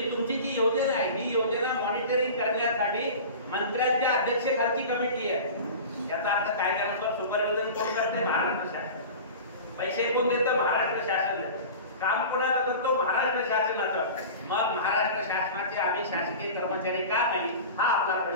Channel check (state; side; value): inverted; both; correlation -0.35